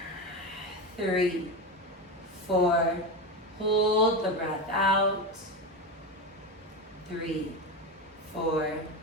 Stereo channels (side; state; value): both; normal; correlation 0.18